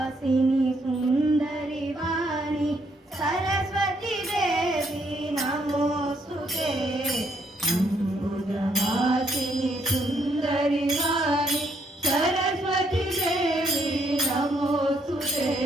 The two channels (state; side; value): normal; both; correlation 0.71